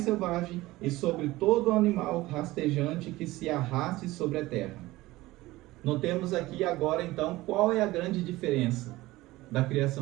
selvagens e sobre todo animal rastejante que se arraste sobre a terra. Notemos aqui agora então qual é a grande diferença da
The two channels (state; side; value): quieter; left; 18.5 dB